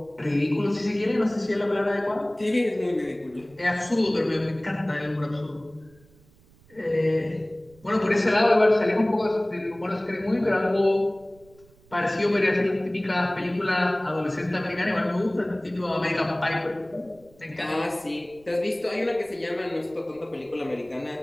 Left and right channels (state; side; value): noise; right; rumble, 28 dB below the sound